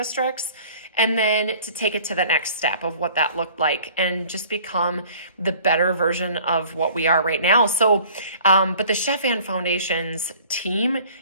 And then to take it to the next step of what that looked like and just become the better version of what we are right now. So, but the Chef Ann Foundation's team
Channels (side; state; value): both; inverted; correlation -0.50